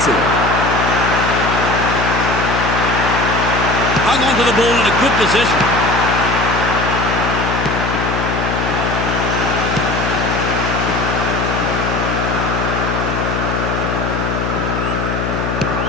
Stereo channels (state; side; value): noise; left; hum, 2 dB below the sound